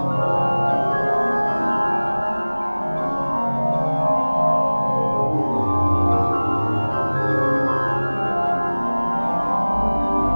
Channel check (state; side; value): inverted; both; correlation -1.00